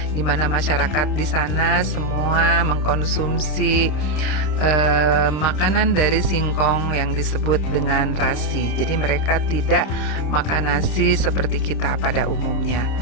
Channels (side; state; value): right; late; 26 ms